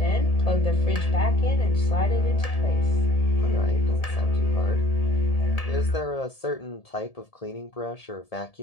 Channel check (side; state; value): right; late; 1.7 ms